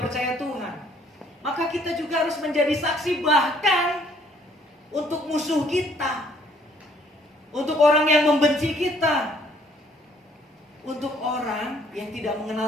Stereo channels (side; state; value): both; normal; correlation 0.62